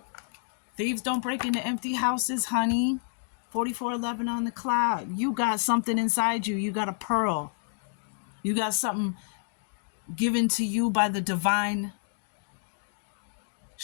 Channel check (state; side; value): silent; right; 59 dB below the other